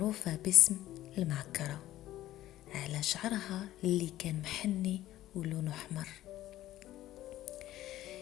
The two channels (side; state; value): right; quieter; 14.5 dB